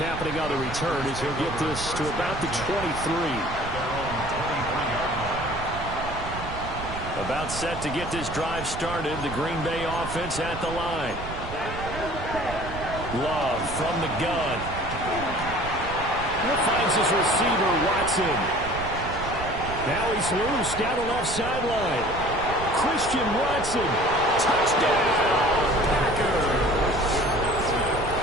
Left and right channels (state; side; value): noise; right; rumble, 9 dB below the sound